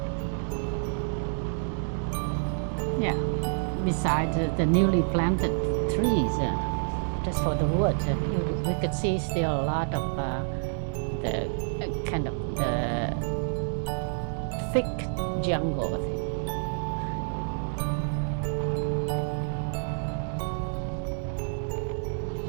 Yeah, beside the newly planted trees, just for the wood, we could see still a lot of the kind of the thick jungle.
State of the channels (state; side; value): silent; left; digital silence